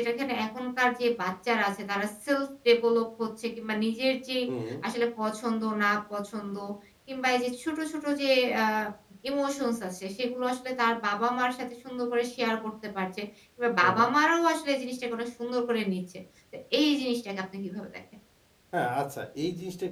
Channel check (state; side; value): identical; both; correlation 1.00